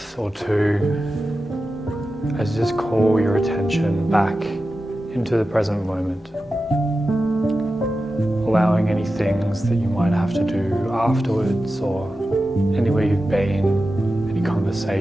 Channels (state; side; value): normal; both; correlation 0.92